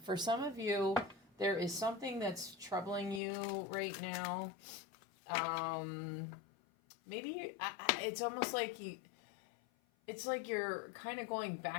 For some of you, there is something that's troubling you right now. Maybe it's almost like it's like you're kind of going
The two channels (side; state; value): right; drops out; at 3.2 s